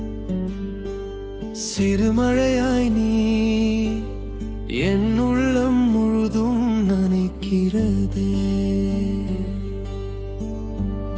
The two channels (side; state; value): both; identical; correlation 1.00